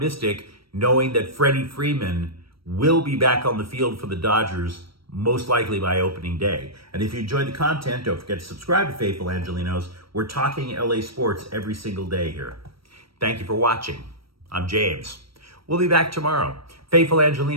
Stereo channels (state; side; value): late; left; 0.75 ms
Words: knowing that Freddie Freeman will be back on the field for the Dodgers most likely by opening day? And if you enjoyed the content, don't forget to subscribe to Faithful Angelenos. We're talking LA sports every single day here. Thank you for watching. I'm James. We'll be back tomorrow. Faithful